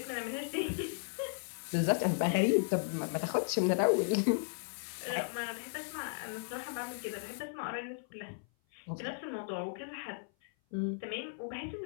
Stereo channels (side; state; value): right; silent; 54 dB below the other